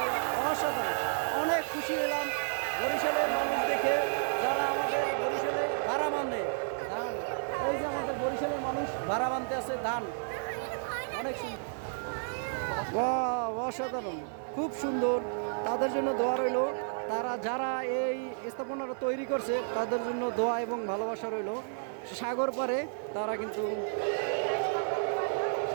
যে অসাধারণ, অনেক খুশি হলাম বরিশালের মানুষ দেখে, যারা আমাদের বরিশালে ভাড়া মানে ধান। এই যে আমাদের বরিশালের মানুষ ভাড়া বানতে আছে ধান, অনেক সুন্দর। বাহ, অসাধারণ, খুব সুন্দর। তাদের জন্য দোয়া রইল, তারা যারা এই স্থাপনাটা তৈরি করছে তাদের জন্য দোয়া এবং ভালোবাসা রইল। সাগর পারে তারা কিন্তু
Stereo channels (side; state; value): left; silent; 57 dB below the other